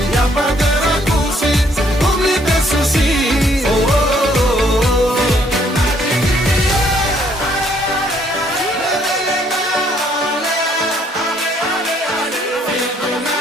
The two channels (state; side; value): normal; both; correlation 0.66